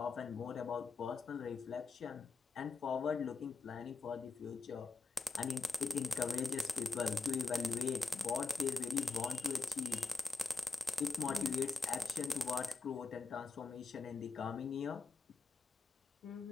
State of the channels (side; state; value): right; quieter; 4.2 dB